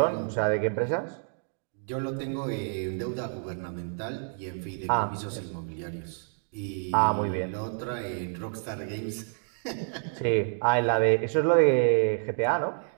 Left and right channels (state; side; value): silent; left; digital silence